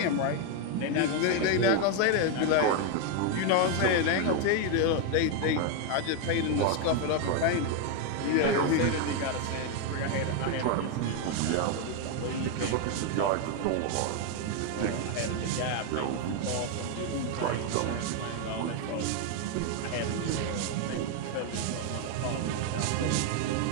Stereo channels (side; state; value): both; different; correlation 0.01